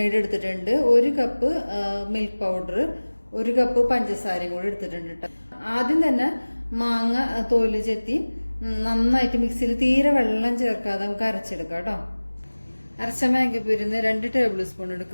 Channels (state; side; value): inverted; both; correlation -1.00